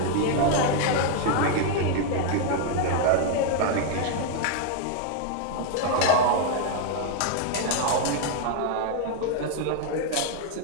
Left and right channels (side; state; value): both; different; correlation 0.00